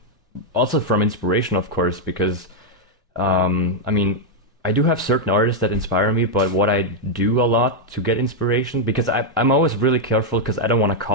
also from inspiration, of course, because I mean I do have certain artists that inspire me, but what I do a lot to get inspiration, because I'm always really careful because I don't want to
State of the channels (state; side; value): normal; both; correlation -0.01